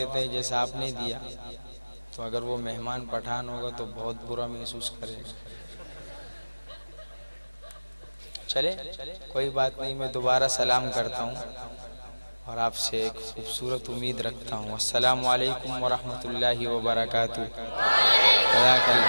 ہے جیسا آپ نے دیا، تو اگر وہ مہمان پٹھان ہوگا تو بہت برا محسوس کرے گا۔ چلے کوئی بات نہیں، میں دوبارہ سلام کرتا ہوں اور آپ سے ایک خوبصورت امید رکھتا ہوں۔ السلام علیکم ورحمۃ اللہ وبرکاتہ۔ جزاک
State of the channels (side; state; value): both; inverted; correlation -1.00